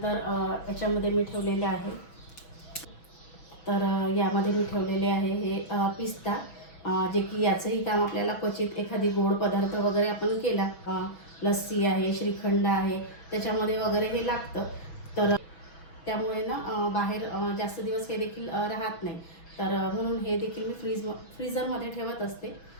याच्यामध्ये मी ठेवलेले आहे, तर यामध्ये मी ठेवलेले आहे हे पिस्ता, जे की याचंही काम आपल्याला क्वचित एखादी गोड पदार्थ वगैरे आपण केला, लस्सी आहे, श्रीखंड आहे, त्याच्यामध्ये वगैरे हे लागतं। तर त्यामुळे ना बाहेर जास्त दिवस हे देखील राहत नाही, तर म्हणून हे देखील मी फ्रीझरमध्ये ठेवत असते,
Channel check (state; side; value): late; right; 6.1 ms